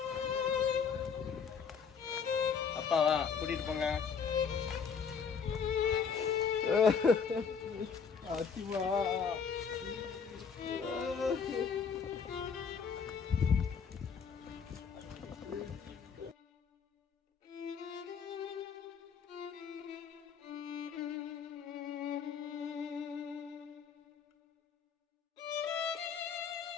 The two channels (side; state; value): right; quieter; 6.3 dB